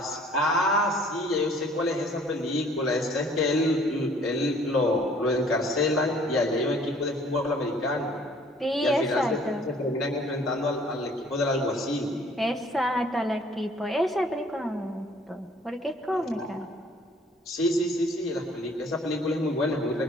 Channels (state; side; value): normal; both; correlation 0.56